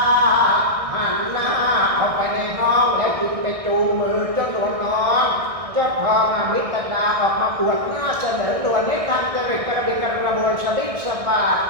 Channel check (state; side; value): late; left; 1.6 ms